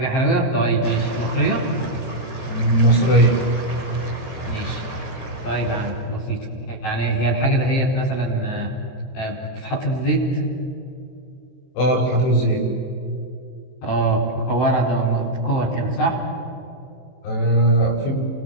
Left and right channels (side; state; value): right; late; 23 ms